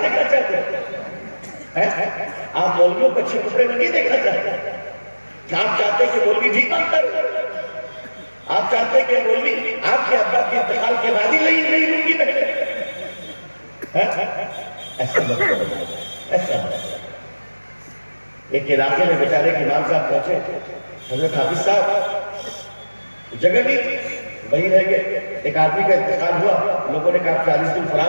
دیکھنا چاہتے، آپ مولویوں کو اچھے کپڑے میں نہیں دیکھنا چاہتے، آپ چاہتے کہ مولوی بھی کام کر، آپ چاہتے کہ مولوی آپ کے ابا کے انتقال کے بعد ہی نہیں لوں گی پہلے، ایسا مت کرو، ایسا مت۔ ایک علاقے میں بیچارے کے امام صاحب پہنچے، حضرت حافظ صاحب جگہ نہیں تھی، وہیں رہ گئے۔ ایک آدمی کا انتقال ہوا، لوگوں نے کہا 40 دن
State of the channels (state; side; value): inverted; both; correlation -1.00